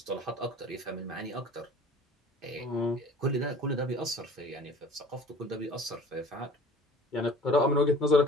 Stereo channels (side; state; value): both; normal; correlation 0.46